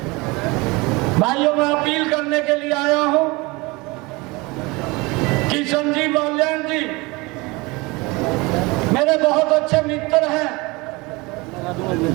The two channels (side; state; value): left; quieter; 24.5 dB